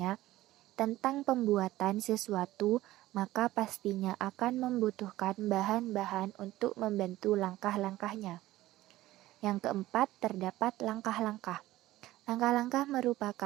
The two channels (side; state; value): left; quieter; 16.2 dB